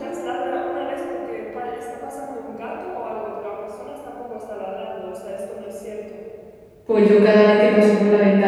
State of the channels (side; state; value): both; identical; correlation 1.00